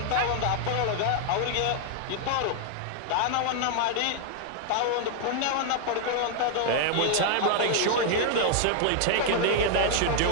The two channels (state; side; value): different; both; correlation -0.01